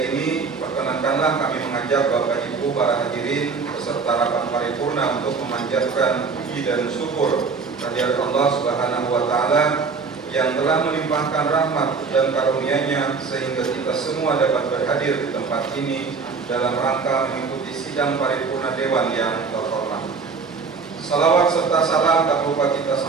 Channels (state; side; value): quieter; left; 5.0 dB